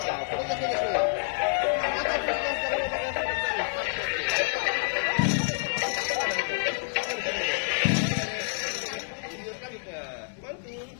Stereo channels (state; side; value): silent; right; 59 dB below the other